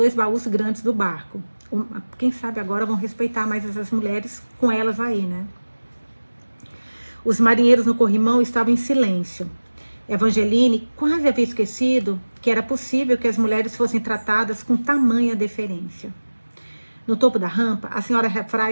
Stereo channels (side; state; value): both; inverted; correlation -1.00